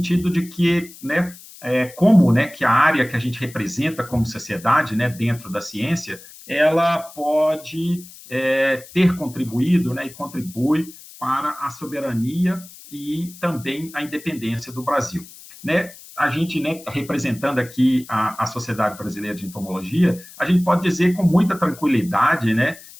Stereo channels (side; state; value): left; noise; hiss, 19 dB below the sound